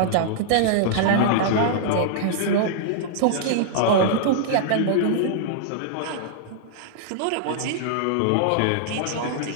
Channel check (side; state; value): both; different; correlation -0.01